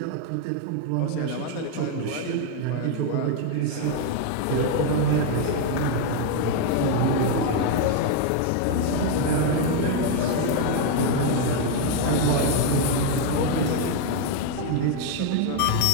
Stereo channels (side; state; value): both; different; correlation 0.01